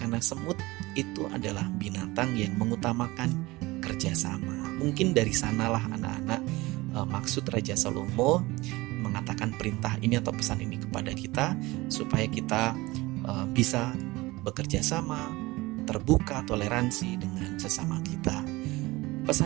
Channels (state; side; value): quieter; left; 20.9 dB